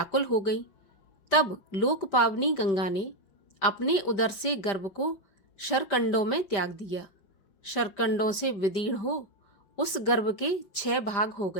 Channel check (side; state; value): right; late; 5.1 ms